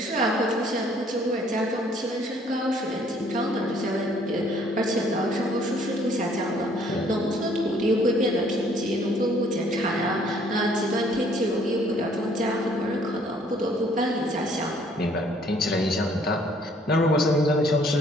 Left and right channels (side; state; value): both; normal; correlation 0.61